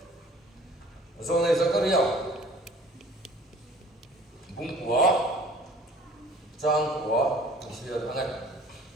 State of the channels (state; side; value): normal; both; correlation 0.50